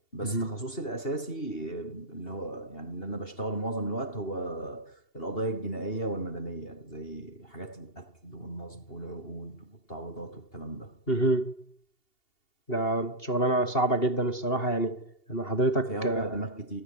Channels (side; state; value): right; late; 2.8 ms